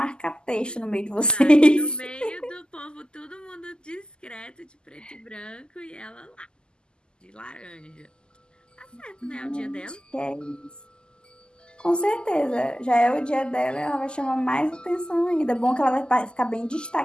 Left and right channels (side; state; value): right; late; 0.047 ms